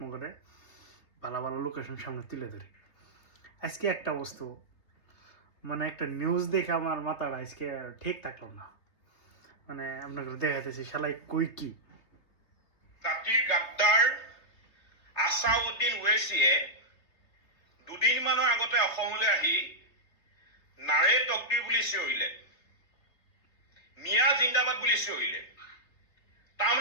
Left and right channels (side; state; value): right; late; 3.2 ms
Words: ভালো ভালো লোকেশন সামনে তুলে ধরি। আজকে একটা বস্তু মানে একটা নিউজ দেখে আমার মাথাটা আজকে ঠিক থাকলো না। মানে আপনাকে দেখাতেছি শালাই কই কি জাতিৰ গাদ্দাৰ আছাউদ্দিন ওৱেইছিয়ে দুদিনমানৰ আগতে অসমলৈ আহি নাৰে তকদিৰ বুলি চিঞৰিলে, মিয়া জিন্দাবাদ বুলি চিঞৰিলে।